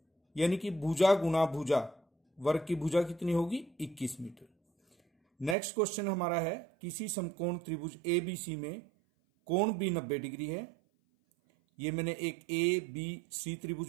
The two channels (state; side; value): drops out; left; at 5.6 s